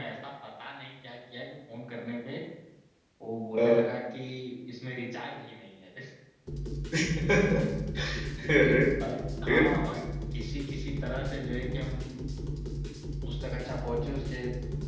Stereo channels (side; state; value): both; identical; correlation 1.00